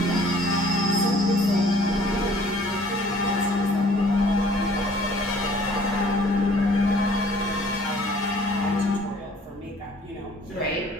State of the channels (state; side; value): normal; both; correlation 0.55